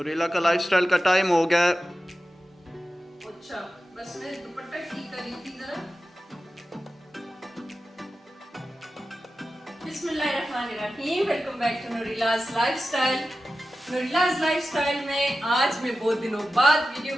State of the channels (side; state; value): both; normal; correlation 0.93